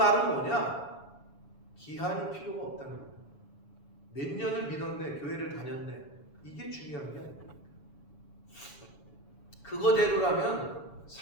뭐냐? 기한이 필요가 없다는 거예요. 몇 년을 믿었네, 교회를 다녔네, 이게 중요한 게 아닙니다. 그거대로라면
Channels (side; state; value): right; late; 7.0 ms